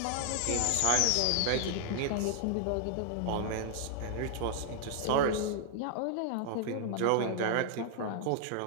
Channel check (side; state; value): both; different; correlation 0.00